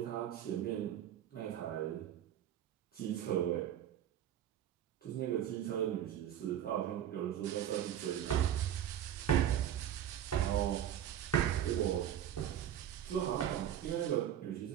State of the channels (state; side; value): quieter; left; 10.7 dB